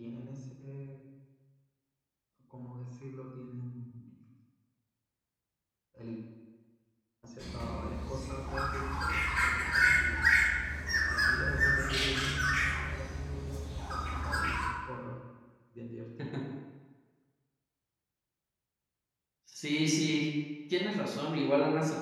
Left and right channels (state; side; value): identical; both; correlation 1.00